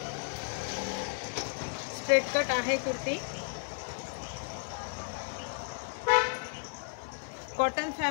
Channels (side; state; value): right; silent; digital silence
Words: स्ट्रेट कट आहे कुर्ती। कॉटन